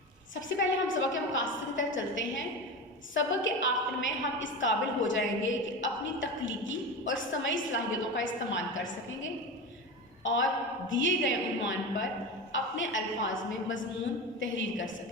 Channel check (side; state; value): both; normal; correlation 0.24